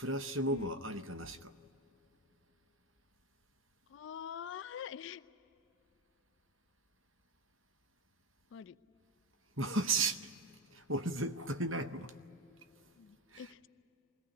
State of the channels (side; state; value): both; normal; correlation 0.15